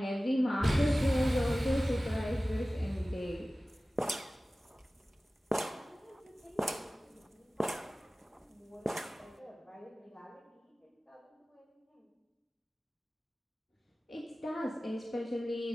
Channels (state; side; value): normal; both; correlation 0.97